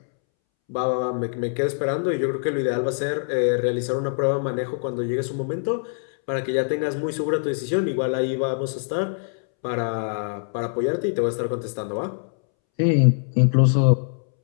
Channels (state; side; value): silent; right; 63 dB below the other